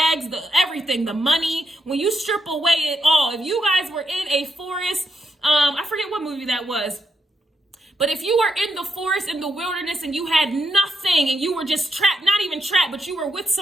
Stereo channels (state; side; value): normal; both; correlation 0.81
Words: the everything, the money. When you strip away it all, if you guys were in a forest, I forget what movie that was, But if you were in the forest, in the wilderness, and you had nothing, and you were just trapped, not even trapped, but you were with